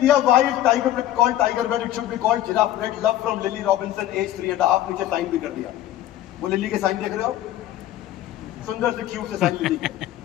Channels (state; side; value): quieter; right; 13.2 dB